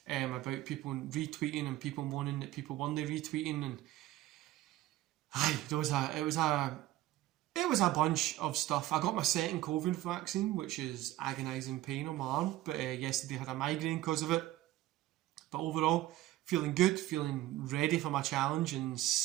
about people retweeting and people moaning that people weren't retweeting, and it was a bunch of stuff. I got my second COVID vaccine, which is agonising pain on my arm, but yesterday I had a migraine because of it. But overall, feeling good, feeling ready for my challenge in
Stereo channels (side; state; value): left; quieter; 15.4 dB